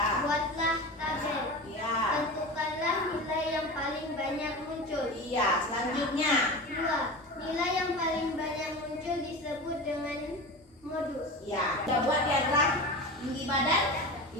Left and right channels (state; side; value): normal; both; correlation 0.29